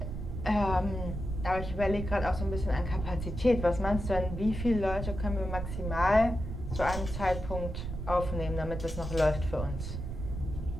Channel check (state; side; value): noise; right; rumble, 6 dB below the sound